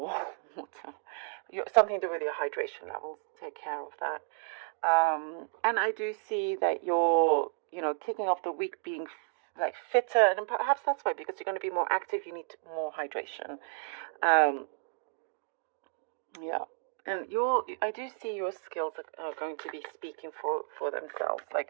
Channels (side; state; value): left; silent; digital silence